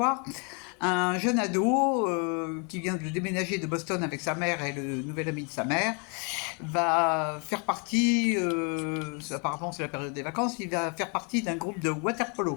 Un jeune ado qui vient de déménager de Boston avec sa mère et le nouvel ami de sa mère va faire partie, apparemment c'est la période des vacances, il va faire partie d'un groupe de water polo.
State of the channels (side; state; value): right; quieter; 35.2 dB